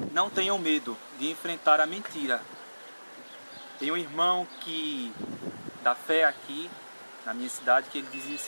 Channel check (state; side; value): inverted; both; correlation -1.00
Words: não tenham medo de enfrentar a mentira. Tem um irmão da fé aqui na minha cidade que ele dizia o